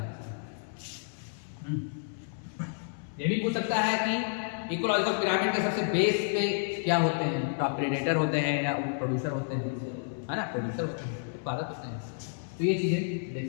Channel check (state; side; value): silent; right; 57 dB below the other